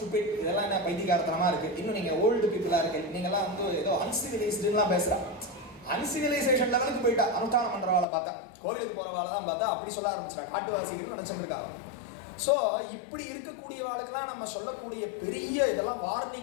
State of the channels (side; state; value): right; drops out; at 8.1 s